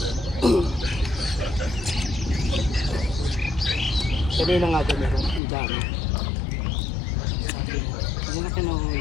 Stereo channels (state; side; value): drops out; right; at 5.4 s